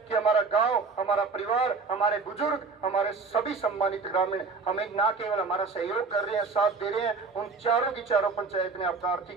कि हमारा गांव, हमारा परिवार, हमारे बुजुर्ग, हमारे सभी सम्मानित ग्रामीण हमें ना केवल हमारा सहयोग कर रहे हैं, साथ दे रहे हैं, उन चारों की चारों पंचायत ने आपका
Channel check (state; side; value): quieter; left; 4.4 dB